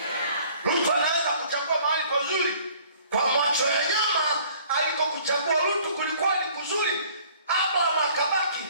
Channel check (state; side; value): inverted; both; correlation -0.55